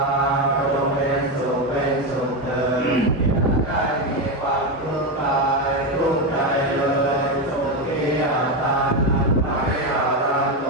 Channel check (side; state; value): both; normal; correlation 0.11